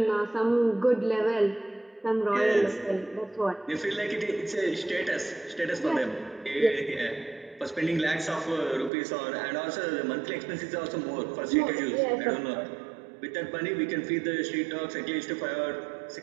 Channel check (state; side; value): drops out; left; at 8.9 s